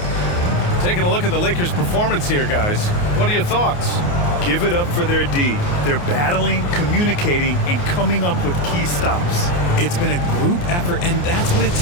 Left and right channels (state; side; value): late; right; 29 ms